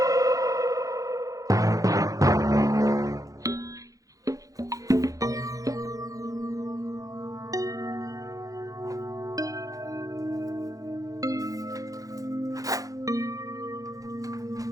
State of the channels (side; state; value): left; late; 0.17 ms